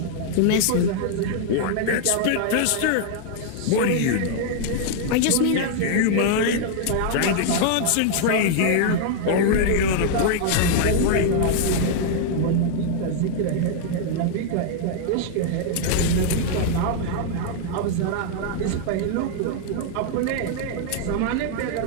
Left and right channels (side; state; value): both; different; correlation -0.01